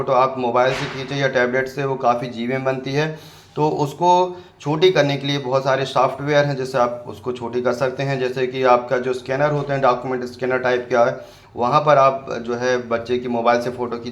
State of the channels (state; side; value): identical; both; correlation 1.00